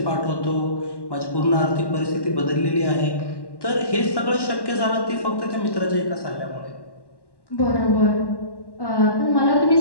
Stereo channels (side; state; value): right; late; 1.1 ms